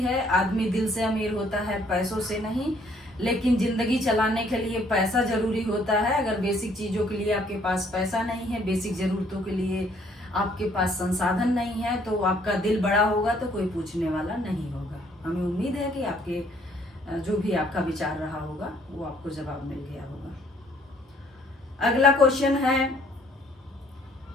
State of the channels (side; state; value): both; normal; correlation 0.63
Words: है, आदमी दिल से अमीर होता है, पैसों से नहीं। लेकिन जिंदगी चलाने के लिए पैसा जरूरी होता है। अगर बेसिक चीजों के लिए आपके पास पैसा नहीं है, बेसिक जरूरतों के लिए आपके पास संसाधन नहीं है, तो आपका दिल बड़ा होगा तो कोई पूछने वाला नहीं होगा। हमें उम्मीद है कि आपके जो भी आपका विचार रहा होगा वो आपको जवाब मिल गया होगा। अगला क्वेश्चन है